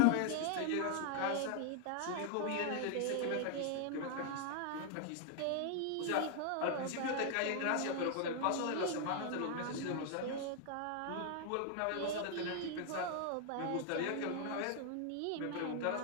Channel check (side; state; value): both; different; correlation 0.00